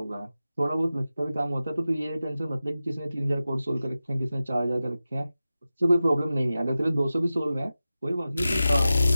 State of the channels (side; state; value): both; inverted; correlation -0.94